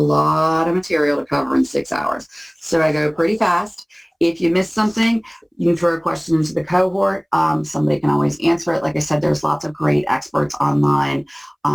of material to cover in 6 hours. So I go pretty fast. If you miss something, you can throw a question into the cohort. Somebody can always answer it. Like I said, there's lots of great experts online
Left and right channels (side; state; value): both; identical; correlation 1.00